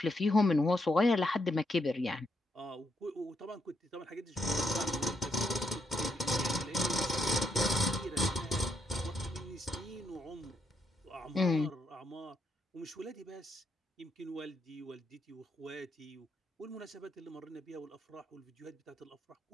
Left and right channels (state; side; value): normal; both; correlation 0.78